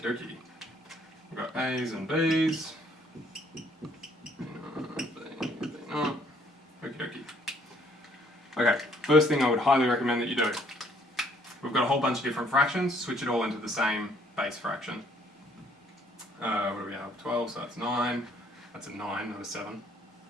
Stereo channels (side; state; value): both; normal; correlation 0.63